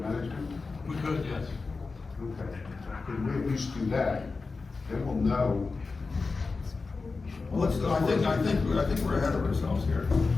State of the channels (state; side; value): quieter; right; 4.2 dB